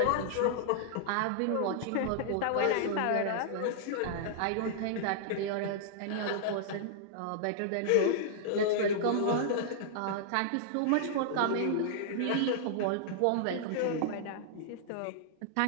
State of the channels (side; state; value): both; different; correlation -0.01